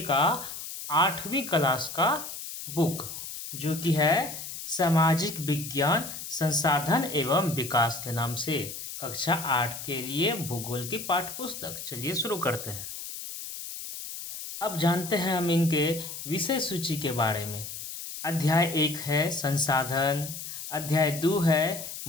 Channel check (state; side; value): noise; left; hiss, 9 dB below the sound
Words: का 8वीं क्लास का बुक, जो कि है सामाजिक विज्ञान संसाधन एवं विकास के नाम से, कक्षा 8 के लिए भूगोल की पाठ्य पुस्तक। चलिए शुरू करते हैं। अब जानते हैं हम इनके विषय सूची के बारे में। अध्याय 1 है संसाधन। अध्याय 2 है